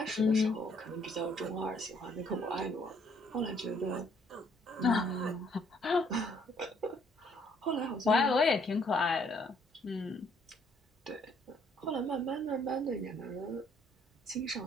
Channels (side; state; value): both; normal; correlation 0.65